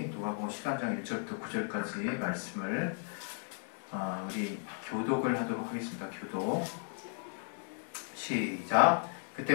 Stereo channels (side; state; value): right; silent; 54 dB below the other